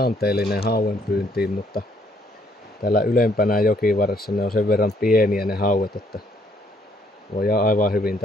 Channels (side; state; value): both; normal; correlation 0.67